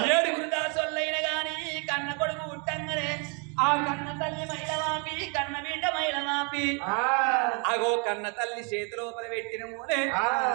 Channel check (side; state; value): left; quieter; 35.6 dB